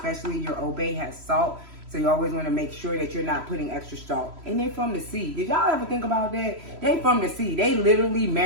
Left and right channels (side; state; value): left; late; 3.0 ms